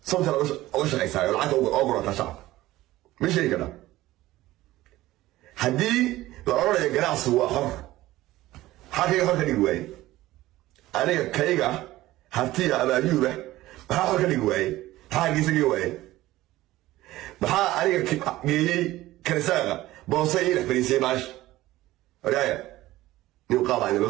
somta oo shaqaysa lacag oo gurata shacab ma shay kada hadii la oranayo ganacsi waa xor xaqiiqa xor ka dhigi waayay aniga kayga hartiya abaayuba maxaa xor ka dhigi waayay حاجة سجواي بحا أنا جيي كرسالة بوصي فريسي باش رأي يقال عن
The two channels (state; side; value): quieter; left; 16.7 dB